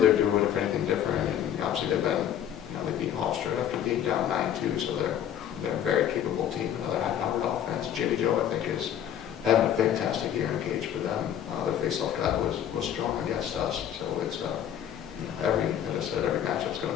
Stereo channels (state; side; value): quieter; right; 10.0 dB